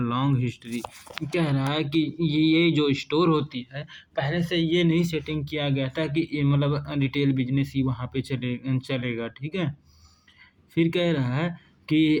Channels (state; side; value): identical; both; correlation 1.00